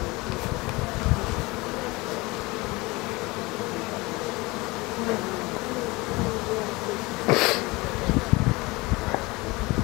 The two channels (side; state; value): right; quieter; 23.2 dB